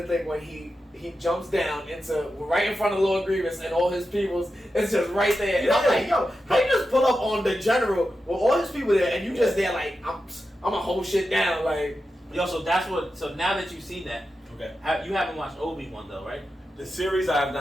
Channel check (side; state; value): both; normal; correlation 0.90